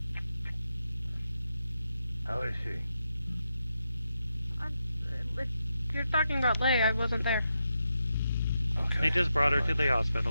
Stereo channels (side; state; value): both; inverted; correlation -0.85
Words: How is she? If you're talking about Leia, I wasn't there. They just brought her to the